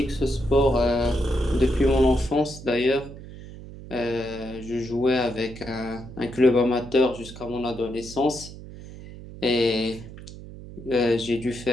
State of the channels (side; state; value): right; noise; hum, 14 dB below the sound